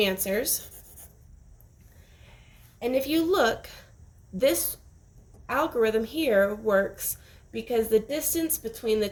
And if you look, this algorithm here works because the distance between the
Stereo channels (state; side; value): identical; both; correlation 1.00